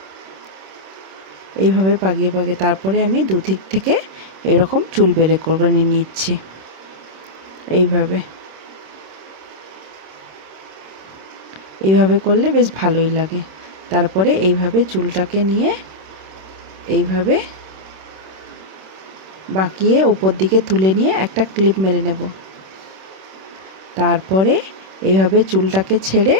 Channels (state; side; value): late; left; 26 ms